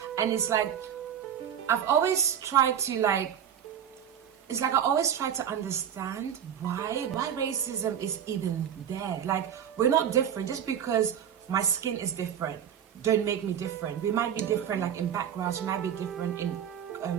And it's like, I've always tried to I always try to understand why racism is even there. Like, we're not different. Just because my skin is different don't make me different. We might be different, like in backgrounds, we might be different in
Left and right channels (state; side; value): quieter; left; 9.1 dB